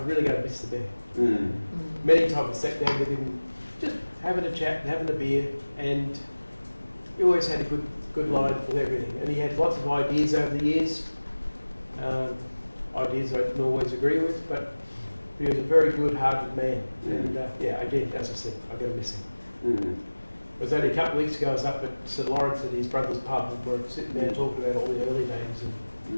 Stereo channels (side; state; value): both; inverted; correlation -1.00